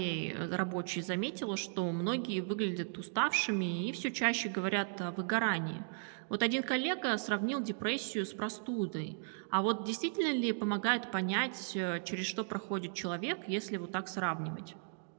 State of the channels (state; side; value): silent; left; digital silence